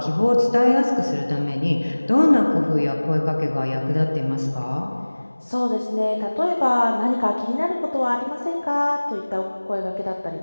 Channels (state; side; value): inverted; both; correlation -1.00